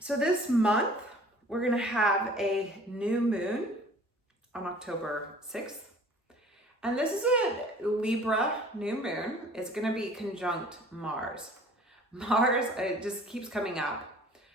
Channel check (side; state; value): both; normal; correlation 0.49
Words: this month, we're going to have a new moon on October 6th. And this is a Libra new moon. It's going to be conjunct Mars. Mars, it just keeps coming up.